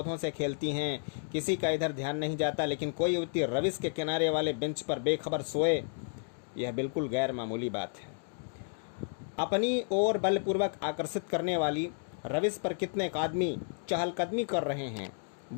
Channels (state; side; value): silent; right; digital silence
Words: से खेलती हैं, किसी का इधर ध्यान नहीं जाता। लेकिन कोई युवती रविश के किनारे वाले बेंच पर बेखबर सोए, यह बिल्कुल गैर मामूली बात है। अपनी ओर बलपूर्वक आकर्षित करने वाली रविश पर कितने आदमी चहलकदमी कर रहे हैं।